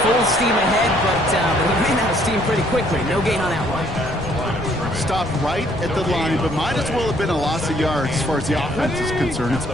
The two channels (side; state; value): left; noise; rumble, 12 dB below the sound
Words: full steam ahead, but he ran out of steam pretty quickly. No gain on that one. Stopped right at the line, but might as well have been a loss of yards as far as the offense is concerned. It's